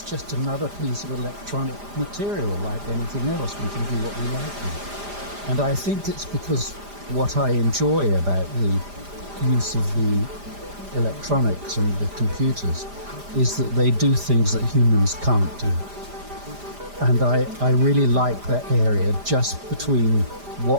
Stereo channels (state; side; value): late; left; 5.0 ms